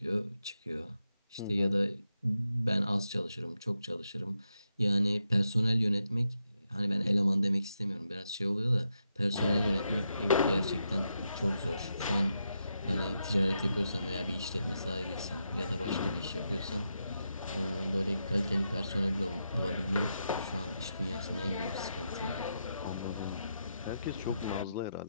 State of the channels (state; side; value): inverted; both; correlation -0.84